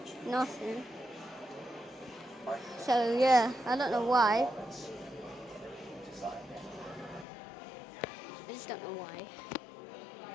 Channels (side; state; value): right; drops out; at 7.2 s